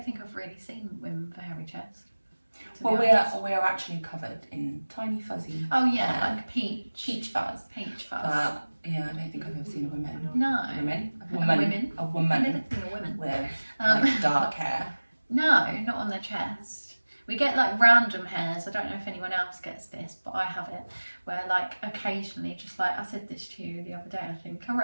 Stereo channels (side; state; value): both; inverted; correlation -1.00